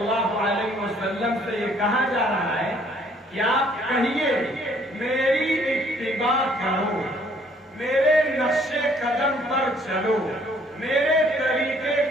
علیہ وسلم سے یہ کہا جا رہا ہے کہ آپ کہیے میری اتباع کرو، میرے نقش قدم پر چلو، میرے طریقے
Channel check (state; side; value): normal; both; correlation 0.62